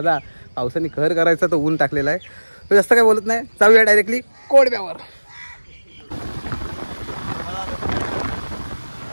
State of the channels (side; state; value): both; inverted; correlation -1.00